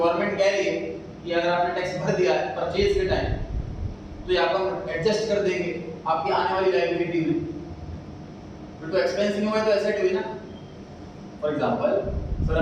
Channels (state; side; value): identical; both; correlation 1.00